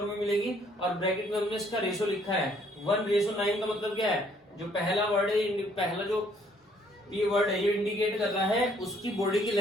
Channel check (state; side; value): normal; both; correlation 0.64